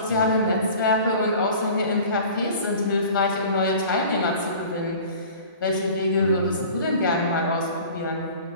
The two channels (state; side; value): inverted; both; correlation -0.43